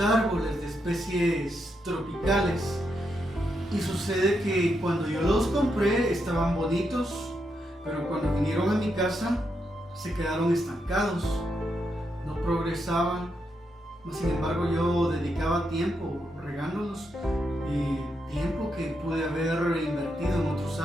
de especies tropicales. Y sucede que cuando yo los compré estaban bonitos, pero cuando vinieron a mi casa se quedaron estancados, no progresaban. Sin embargo, yo dedicaba tiempo regándolos, tiempo que pude haber invertido en otros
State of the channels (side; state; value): both; normal; correlation 0.82